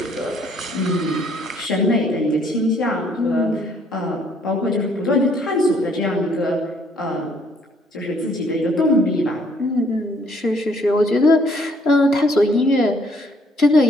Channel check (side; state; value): both; normal; correlation 0.64